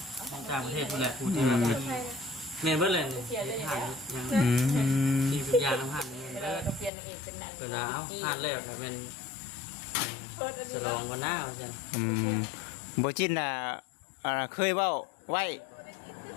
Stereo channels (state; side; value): drops out; right; at 6.9 s